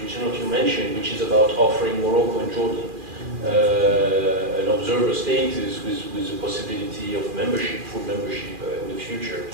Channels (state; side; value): late; left; 2.4 ms